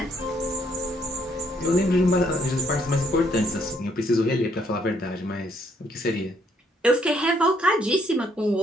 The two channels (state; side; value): normal; both; correlation 0.69